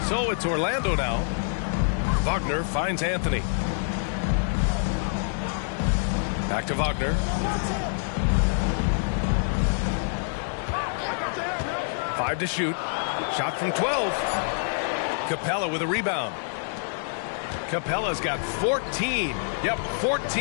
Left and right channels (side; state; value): right; silent; digital silence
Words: So it's Orlando now. Wagner finds Anthony. Back to Wagner. Five to shoot. Shot from 12. Capella with a rebound. Capella's got 14. Yep,